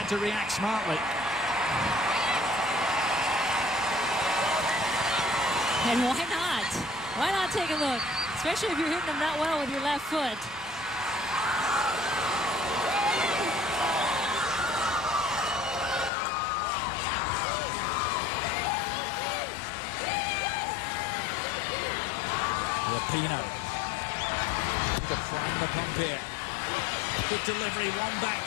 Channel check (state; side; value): drops out; right; at 16.1 s